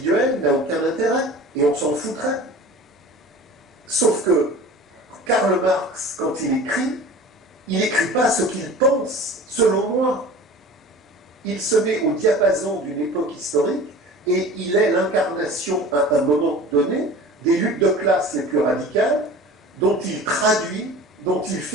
n'a aucun intérêt, et on s'en foutrait. Sauf que Karl Marx, quand il n'écrit pas ce qu'il pense, selon moi. Il se met au diapason d'une époque historique, et il est l'incarnation, à un moment donné, des luttes de classe les plus radicales, dont il traduit, dont il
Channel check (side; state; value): both; normal; correlation 0.40